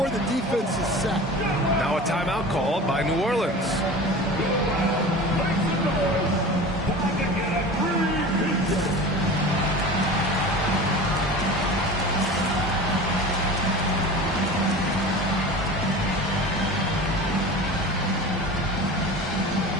the defense is set. Now a timeout called by New Orleans.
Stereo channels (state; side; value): normal; both; correlation 0.35